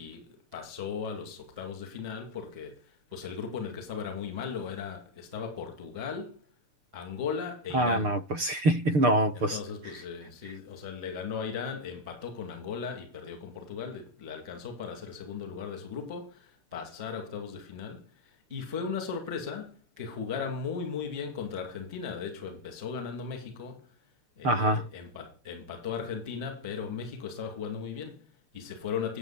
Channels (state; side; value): late; left; 6.7 ms